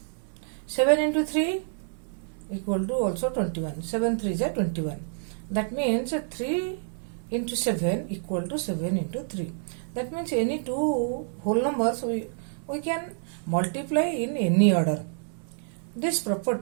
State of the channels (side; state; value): left; silent; 59 dB below the other